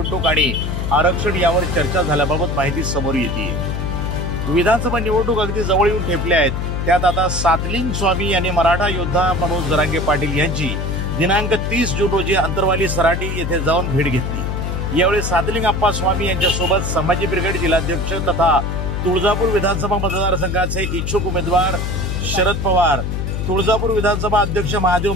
आणि आरक्षण यावर चर्चा झाल्याबाबत माहिती समोर येते। विधानसभा निवडणूक अगदी जवळ येऊन ठेपल्या आहेत। त्यात आता सादलिंग स्वामी यांनी मराठा योद्धा मनोज जरांगे पाटील यांची दिनांक 30 जून रोजी अंतरवाली सराटी येथे जाऊन भेट घेतली। यावेळी सादलिंग अप्पा स्वामी यांच्यासोबत संभाजी ब्रिगेड जिल्हाध्यक्ष तथा तुळजापूर विधानसभा मतदारसंघाचे इच्छुक उमेदवार शरद पवार, तुळजापूर विधानसभा अध्यक्ष महादेव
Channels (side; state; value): left; noise; hum, 2 dB below the sound